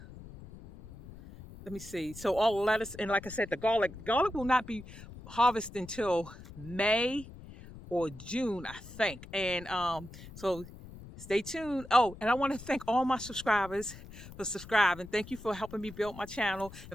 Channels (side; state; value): left; noise; rumble, 16 dB below the sound